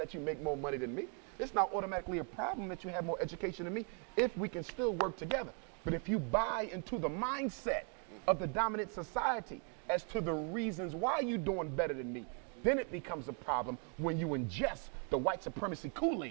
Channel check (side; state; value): left; quieter; 39.4 dB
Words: you make more money than me. It's not automatically a problem that you have more education than me if we can still work together. But if you buy into the mindset of the dominant society as to the reasons why you're doing better than me, then it becomes a problem when you ingest the white supremacy